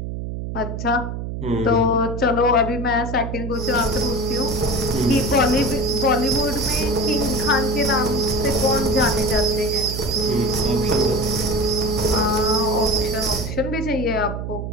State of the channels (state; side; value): noise; right; hum, 5 dB below the sound